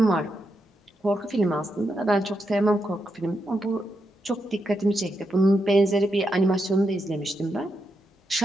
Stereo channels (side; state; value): both; normal; correlation 0.84